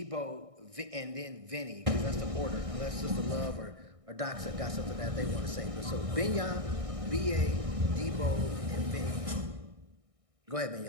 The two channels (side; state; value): left; late; 1.6 ms